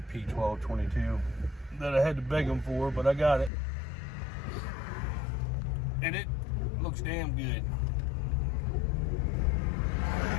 that I had to beg them for, but I got it. And it looks damn good.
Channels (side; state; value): right; drops out; at 3.5 s